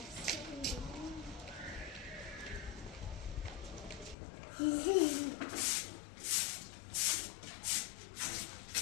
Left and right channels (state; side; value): drops out; right; at 4.2 s